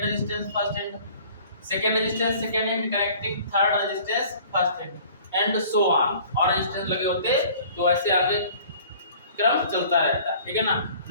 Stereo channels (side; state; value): both; inverted; correlation -0.49